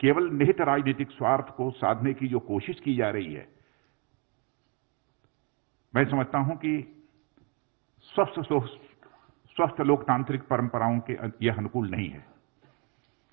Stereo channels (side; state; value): left; quieter; 33.0 dB